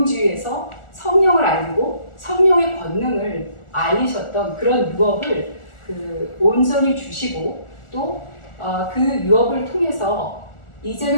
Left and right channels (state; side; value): late; right; 1.4 ms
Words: 성령을 알고 성령의 권능을 알리셨던 그런 유업을 그 온전히 주시고 또 그 유업을 통해서